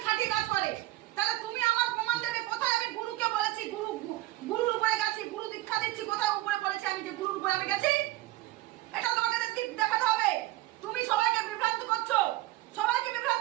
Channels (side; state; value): left; quieter; 17.1 dB